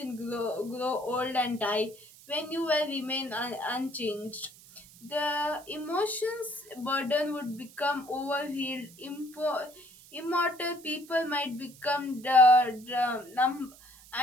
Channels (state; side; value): noise; right; hiss, 22 dB below the sound